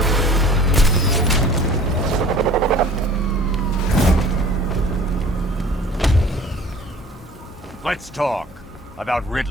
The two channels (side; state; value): both; normal; correlation 0.47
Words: Let's talk about